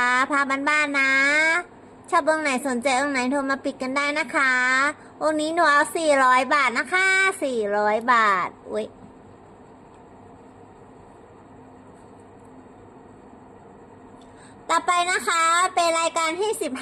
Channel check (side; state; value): both; identical; correlation 1.00